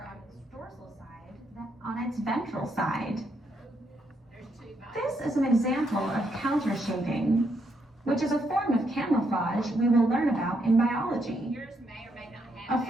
on its dorsal side than on its ventral side. This is an example of countershading, which is a form of camouflage we will learn about in biology. Yours may or may not have A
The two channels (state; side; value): normal; both; correlation 0.76